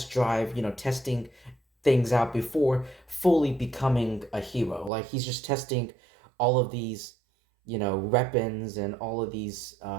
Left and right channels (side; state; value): left; drops out; at 4.9 s